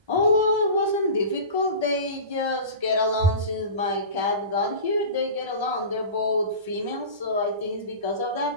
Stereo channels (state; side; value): late; left; 1.3 ms